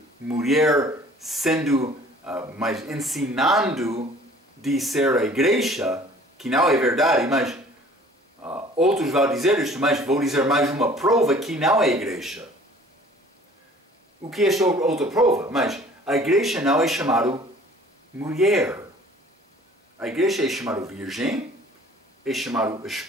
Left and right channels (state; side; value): normal; both; correlation 0.51